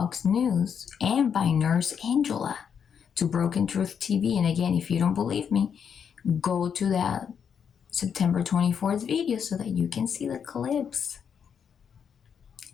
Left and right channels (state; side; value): quieter; right; 7.4 dB